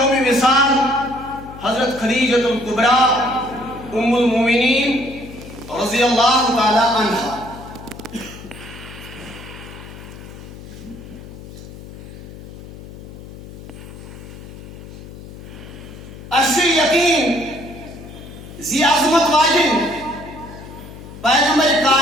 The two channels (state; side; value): noise; left; hum, 15 dB below the sound